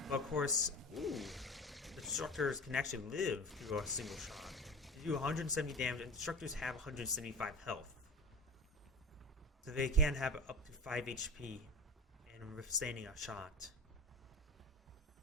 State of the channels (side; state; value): both; normal; correlation 0.31